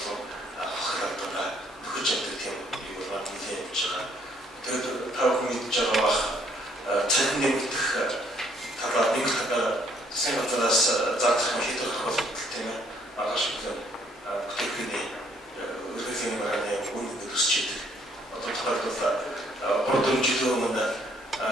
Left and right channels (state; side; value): normal; both; correlation 0.66